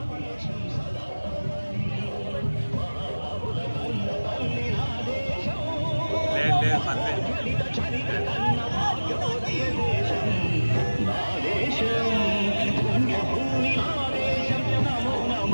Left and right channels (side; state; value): both; inverted; correlation -1.00